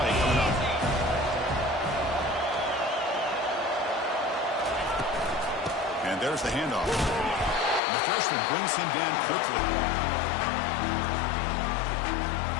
coming up. And there's the handoff. And the freshman brings him down quickly.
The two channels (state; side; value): drops out; right; at 7.8 s